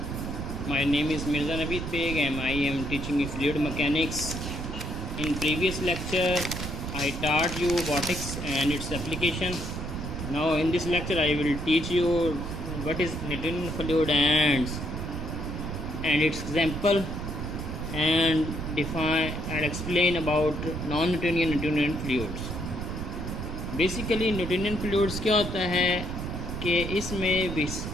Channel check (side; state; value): right; noise; rumble, 5 dB below the sound